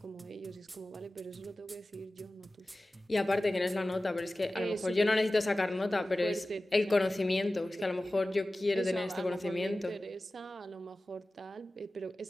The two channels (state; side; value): normal; both; correlation 0.96